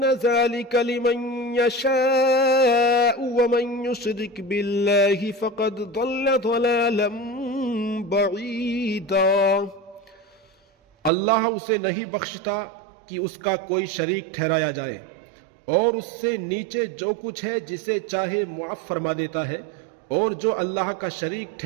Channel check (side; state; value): left; drops out; at 11.1 s